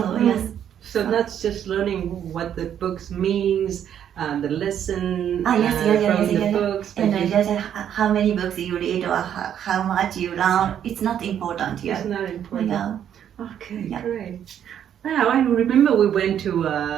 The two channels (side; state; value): left; quieter; 9.6 dB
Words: yes. So that's just learning what the books means, the lesson from the books. And just how many books you read or how much you learn, it's not important. It's not important. Yeah. Okay, great. Wow, I remember we went to